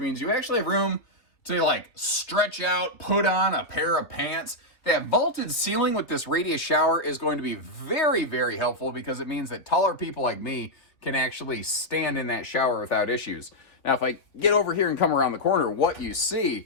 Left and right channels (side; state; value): right; late; 3.1 ms